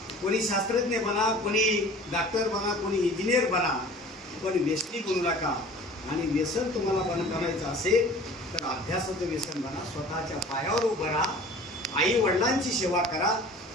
कोणी शास्त्रज्ञ बना, कोणी डॉक्टर बना, कोणी इंजिनियर बना, पण व्यसनी बनू नका. आणि व्यसन तुम्हाला बंद करायचं असेल तर अभ्यासाचं व्यसन बना, स्वतःच्या पायावर उभं राहा, आई वडिलांची सेवा करा.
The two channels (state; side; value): normal; both; correlation 0.45